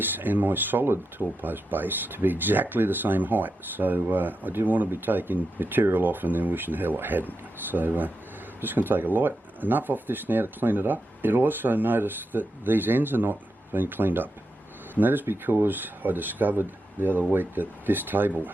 and my solid tall post base to be exactly the same height, so I didn't want to be taking material off and then wishing hell I hadn't. So I'm just going to take a light enough off this now to clean it up. You'll also notice that these ends are not being cleaned up, and that is because I discovered the other week that this table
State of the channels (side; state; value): both; normal; correlation 0.87